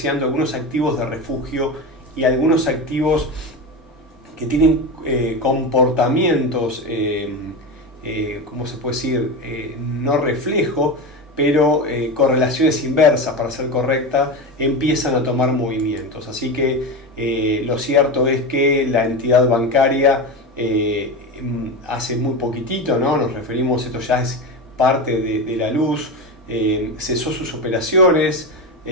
algunos activos de refugio y algunos activos que tienen comportamientos, ¿cómo se puede decir? No reflejo, pero correlaciones inversas, para ser correcta, empiezan a tomar movimientos. Así que lo cierto es que la entidad bancaria hace muy poquitito, ¿no? Nos referimos, esto ya es parte de la luz, cesó sus operaciones,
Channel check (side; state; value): both; normal; correlation 0.20